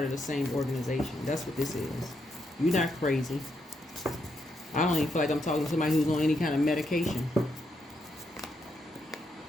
of the same organization. That's what this is. You're not crazy. I don't even feel like I'm talking to somebody who's on any kind of medication.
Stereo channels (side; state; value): both; normal; correlation 0.79